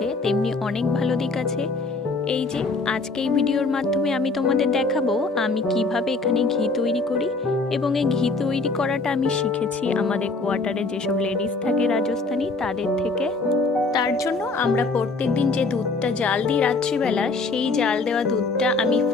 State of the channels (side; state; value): right; quieter; 3.6 dB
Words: তেমনি অনেক ভালো দিক আছে। এই যে আজকে এই ভিডিওর মাধ্যমে আমি তোমাদের দেখাবো আমি কিভাবে এখানে ঘি তৈরি করি। এবং এই ঘি তৈরি করাটা আমি শিখেছি আমাদের কোয়ার্টারে যেসব লেডিস থাকে রাজস্থানী তাদের থেকে। তার জন্য আমরা প্রত্যেক দিন যে দুধটা জাল দিই রাত্রিবেলা, সেই জাল দেওয়া দুধটা আমি